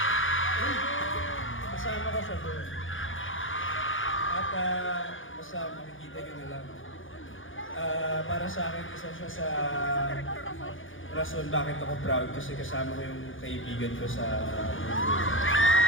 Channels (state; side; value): late; right; 0.58 ms